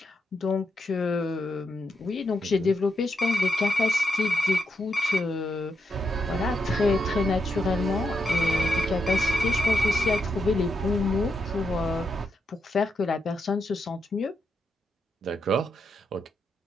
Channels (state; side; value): normal; both; correlation 0.83